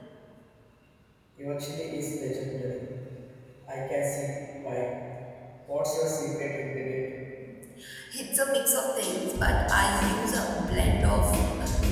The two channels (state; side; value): identical; both; correlation 1.00